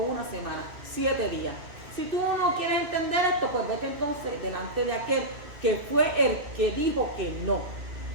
semana, 7 días. Si tú no quieres entender esto, pues vete entonces delante de aquel que fue el que dijo que no.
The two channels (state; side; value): late; left; 2.6 ms